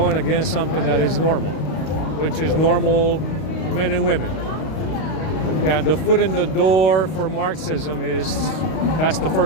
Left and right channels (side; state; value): right; late; 32 ms